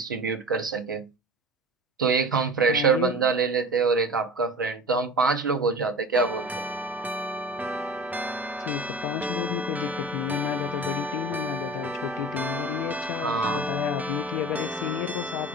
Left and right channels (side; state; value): both; normal; correlation 0.37